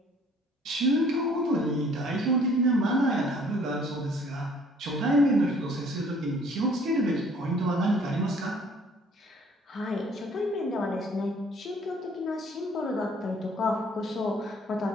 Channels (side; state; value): both; normal; correlation 0.57